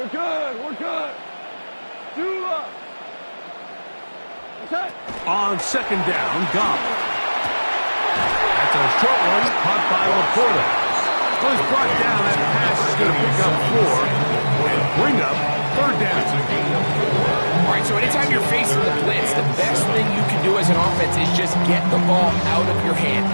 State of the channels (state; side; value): inverted; both; correlation -1.00